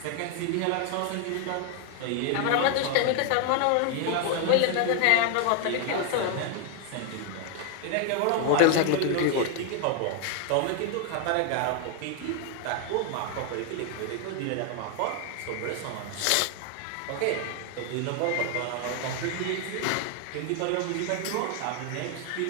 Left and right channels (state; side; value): different; both; correlation 0.00